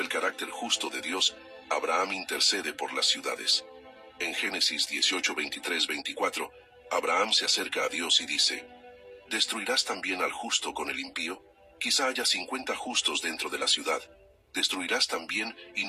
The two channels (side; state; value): both; identical; correlation 1.00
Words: carácter justo de Dios, Abraham intercede por las ciudades. En Génesis 18, 23, 24, Abraham se acerca a Dios y dice: «¿Destruirás también al justo con el impío? Quizá haya 50 justos dentro de la ciudad. ¿Destruirás también y